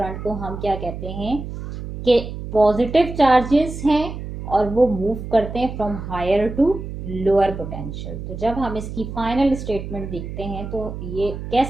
को हम क्या कहते हैं कि पॉजिटिव चार्जेस हैं और वो मूव करते हैं from higher to lower potential. तो जब हम इसकी फाइनल स्टेटमेंट देखते हैं तो ये कह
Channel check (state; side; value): noise; right; hum, 8 dB below the sound